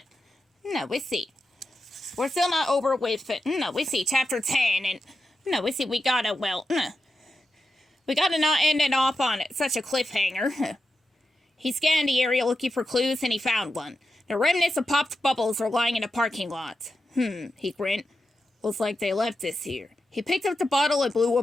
no, we see. We're still not over with it. No, we see chapter 10, and no, we see we gotta not end it off on such a cliffhanger. He scanned the area looking for clues, and he found one. The remnants of popped bubbles were lying in a parking lot. He grinned. Looks like they left this here. He picked up the bottle and blew a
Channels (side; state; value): both; normal; correlation 0.89